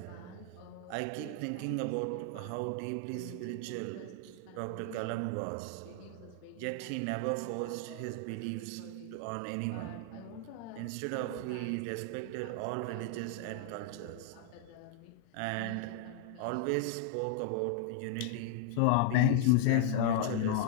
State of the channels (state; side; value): different; both; correlation 0.00